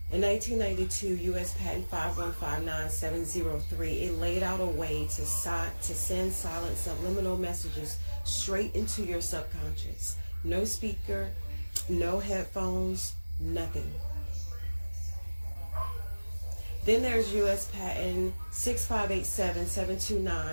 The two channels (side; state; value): both; inverted; correlation -1.00